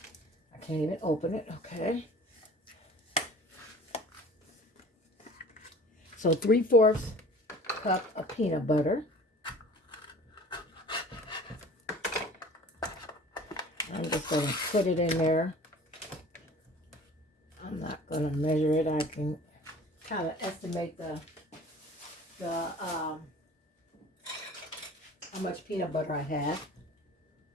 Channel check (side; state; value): both; normal; correlation 0.45